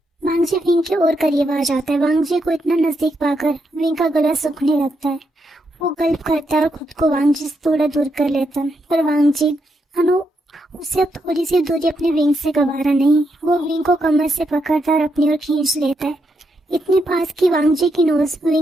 वांगजी विंग की ओर करीब आ जाता है। वांगजी को इतना नजदीक पाकर विंग का गला सूखने लगता है। वो गल्प करता है और खुद को वांगजी से थोड़ा दूर कर लेता है, पर वांगजी उसे अब थोड़ी सी दूरी अपने विंग से गवारा नहीं। वो विंग को कमर से पकड़ता और अपनी ओर खींच लेता है, इतने पास कि वांगजी की नोज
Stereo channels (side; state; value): both; normal; correlation 0.81